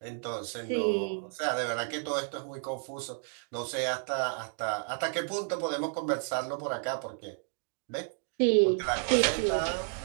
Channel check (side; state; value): left; silent; 57 dB below the other